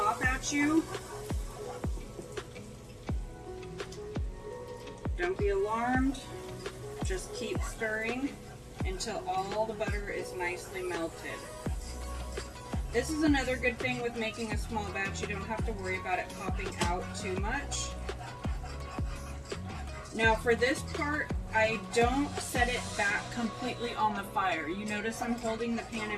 at you. Don't be alarmed. Just keep stirring until all the butter is nicely melted. This is another good thing with making a small batch. You don't have to worry about it popping out too much. Now for this part, I don't set it back completely on the fire. You notice I'm holding the pan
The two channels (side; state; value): both; identical; correlation 1.00